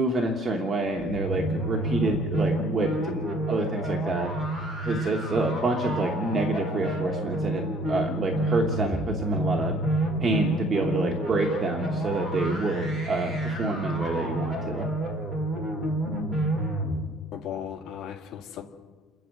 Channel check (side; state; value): both; normal; correlation 0.58